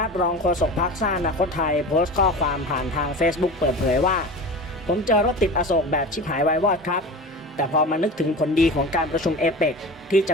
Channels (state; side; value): normal; both; correlation 0.32